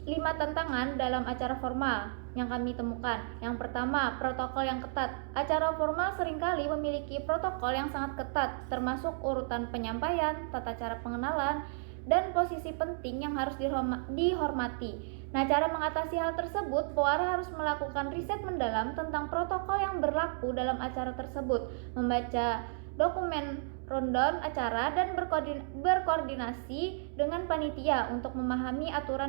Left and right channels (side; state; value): left; silent; digital silence